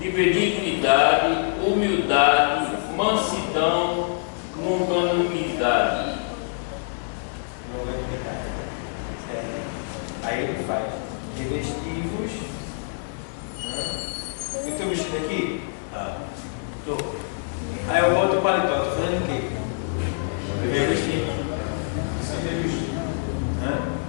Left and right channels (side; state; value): right; silent; digital silence